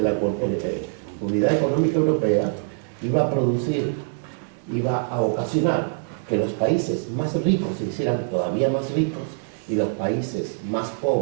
la Unidad Económica Europea iba a ocasionar que los países más ricos se hicieran todavía más ricos y los países más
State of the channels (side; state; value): left; silent; digital silence